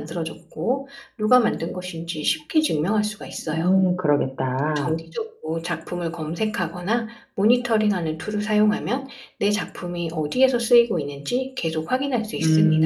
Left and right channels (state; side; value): identical; both; correlation 1.00